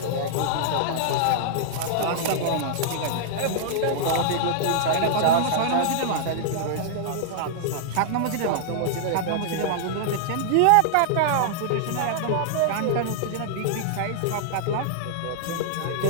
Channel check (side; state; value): both; different; correlation -0.01